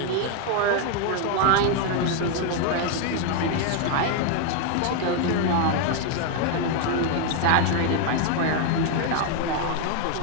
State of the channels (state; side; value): different; both; correlation 0.01